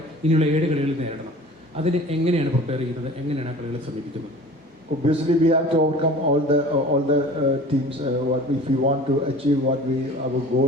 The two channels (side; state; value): both; normal; correlation 0.43